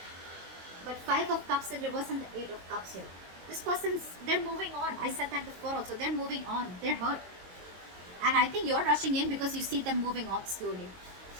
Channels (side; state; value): left; late; 22 ms